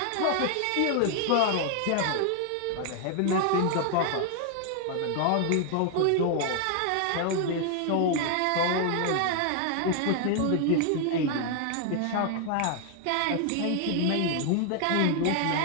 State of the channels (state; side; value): different; both; correlation 0.00